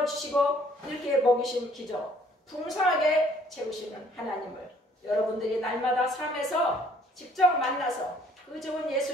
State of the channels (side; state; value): both; normal; correlation 0.60